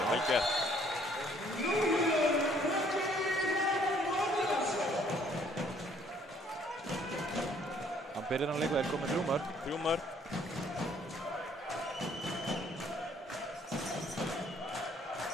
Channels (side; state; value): both; normal; correlation 0.62